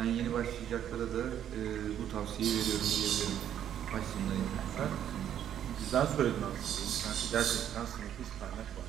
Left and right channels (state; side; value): quieter; left; 10.1 dB